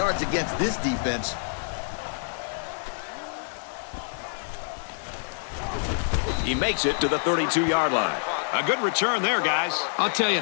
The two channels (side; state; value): right; silent; digital silence